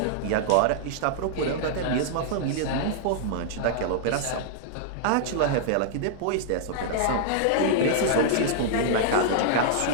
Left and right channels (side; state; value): both; different; correlation -0.01